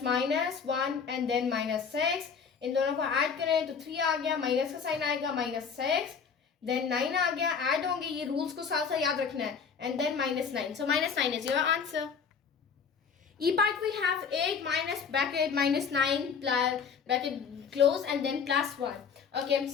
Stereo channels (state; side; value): quieter; right; 6.2 dB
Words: and then -6. इन दोनों को ऐड करें तो 3 आ गया, माइनस का साइन आएगा -6, देन 9 आ गया, ऐड होंगे, ये रूल्स को साथ साथ याद रखना है, and then -9. So -9 is your answer. E part we have 8 minus bracket -9 plus bracket close and then +1. Okay,